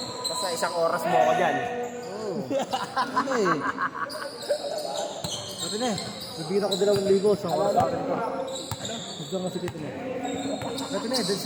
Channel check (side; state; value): both; identical; correlation 1.00